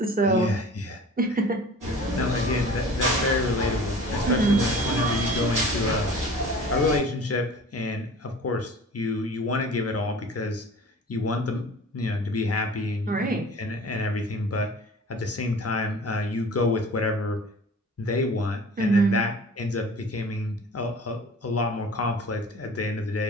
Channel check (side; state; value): both; normal; correlation 0.43